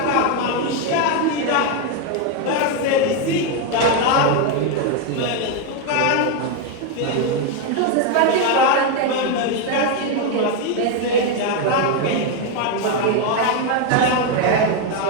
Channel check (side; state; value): both; different; correlation 0.02